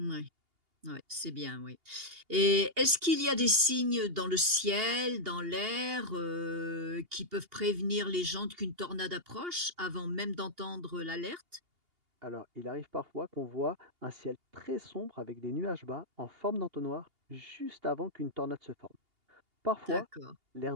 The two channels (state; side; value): late; left; 2.8 ms